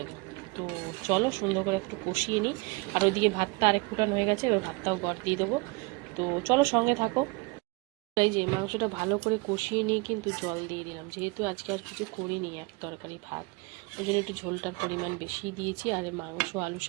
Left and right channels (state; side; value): quieter; left; 27.2 dB